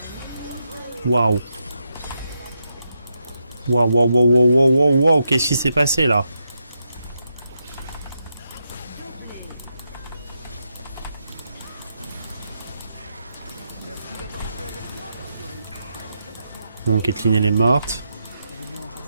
Waouh. Waouh, waouh, waouh, waouh, waouh, waouh, qu'est-ce qui s'est passé là? Bon, Caitlyn elle est morte.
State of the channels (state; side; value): inverted; both; correlation -0.83